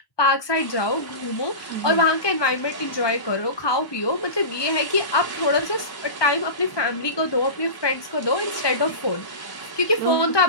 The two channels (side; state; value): right; late; 1.2 ms